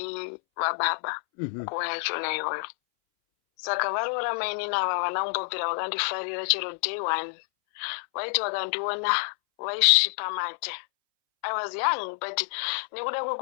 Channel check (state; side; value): silent; right; 59 dB below the other